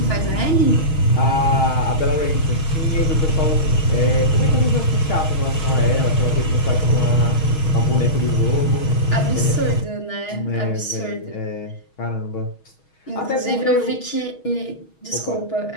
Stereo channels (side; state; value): right; late; 6.3 ms